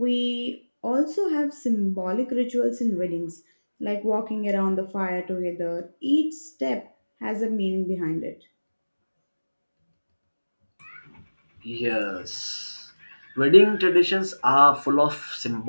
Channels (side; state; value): both; inverted; correlation -1.00